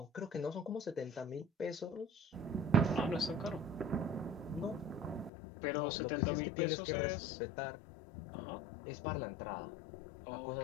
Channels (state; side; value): drops out; right; at 5.3 s